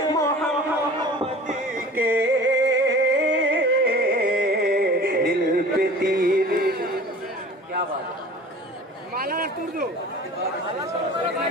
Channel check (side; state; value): both; normal; correlation 0.42